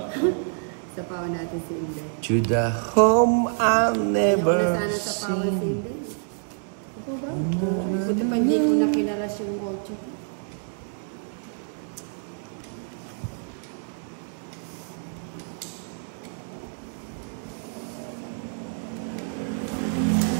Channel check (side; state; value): left; silent; 60 dB below the other